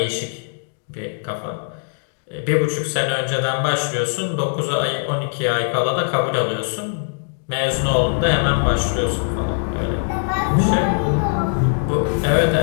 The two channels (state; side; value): silent; right; digital silence